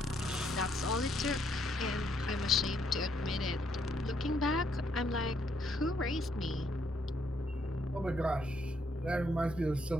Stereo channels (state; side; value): normal; both; correlation 0.72